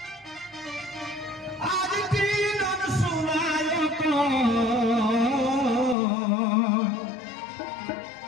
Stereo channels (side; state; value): right; drops out; at 6.0 s